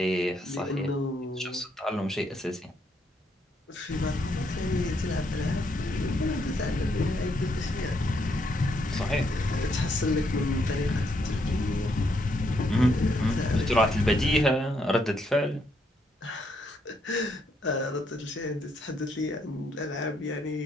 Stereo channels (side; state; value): both; normal; correlation 0.74